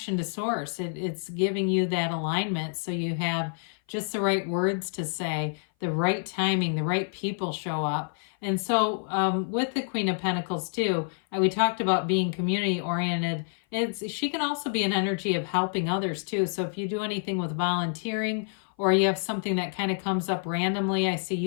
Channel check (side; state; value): right; silent; 57 dB below the other